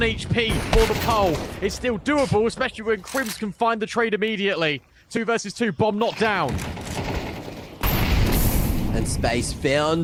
HP for the pole. It's still doable, especially when Crims can find the trade immediately. 2 versus 2. Bomb not down. And space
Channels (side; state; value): both; identical; correlation 1.00